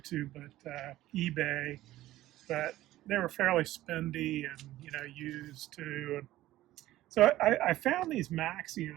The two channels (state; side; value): quieter; left; 15.3 dB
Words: but eBay. But they were fairly spendy and used too. And so I found these